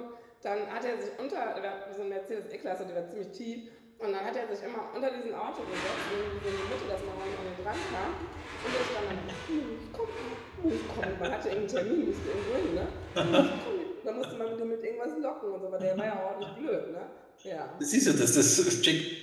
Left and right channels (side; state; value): both; identical; correlation 1.00